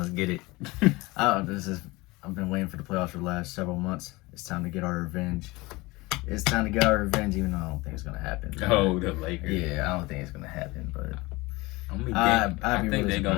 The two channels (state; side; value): quieter; right; 22.5 dB